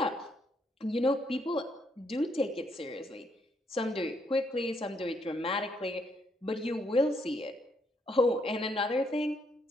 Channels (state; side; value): normal; both; correlation 0.74